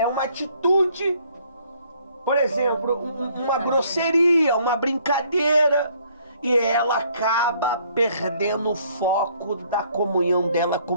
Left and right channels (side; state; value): both; inverted; correlation -0.63